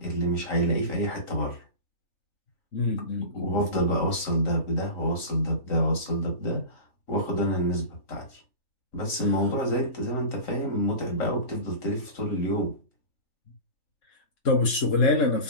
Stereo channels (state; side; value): late; right; 3.4 ms